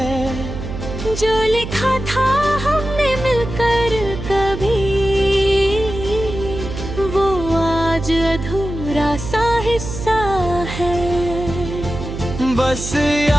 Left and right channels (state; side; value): noise; right; hum, 8 dB below the sound